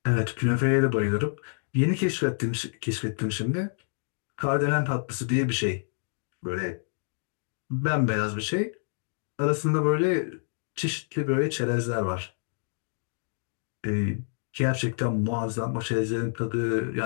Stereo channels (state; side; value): silent; right; digital silence